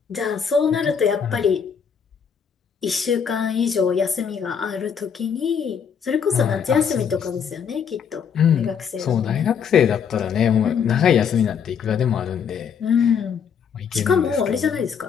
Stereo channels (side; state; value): right; quieter; 7.1 dB